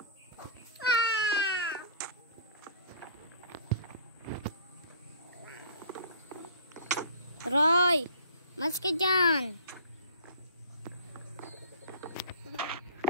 Ah! Roy! Mas ka dyan!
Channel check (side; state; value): both; inverted; correlation -0.45